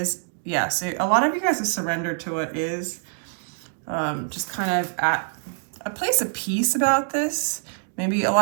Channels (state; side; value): silent; left; digital silence